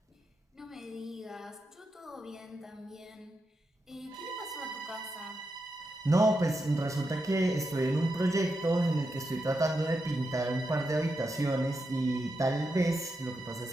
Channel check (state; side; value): normal; both; correlation 0.86